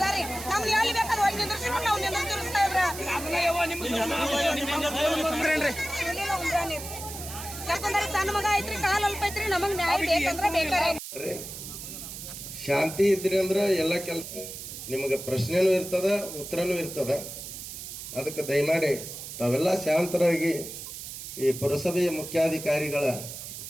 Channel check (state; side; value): noise; right; hiss, 10 dB below the sound